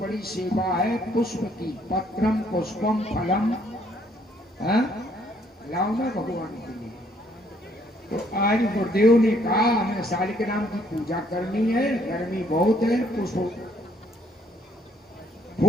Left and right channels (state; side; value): normal; both; correlation 0.66